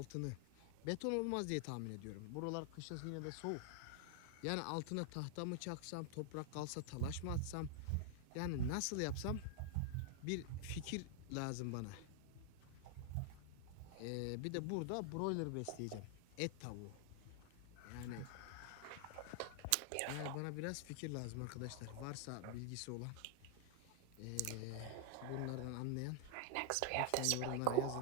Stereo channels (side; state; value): both; different; correlation 0.00